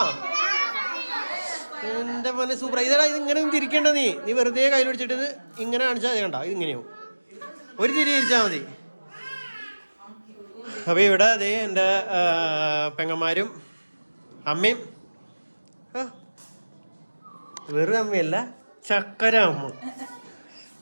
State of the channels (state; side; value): inverted; both; correlation -1.00